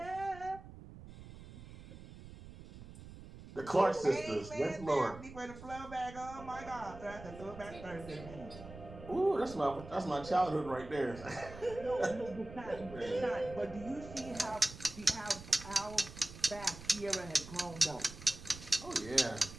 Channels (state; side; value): noise; right; rumble, 15 dB below the sound